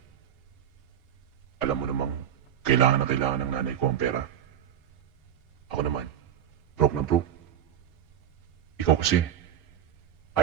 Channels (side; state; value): left; quieter; 9.9 dB